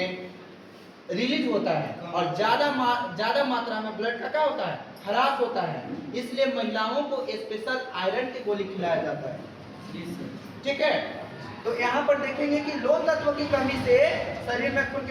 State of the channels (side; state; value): both; identical; correlation 1.00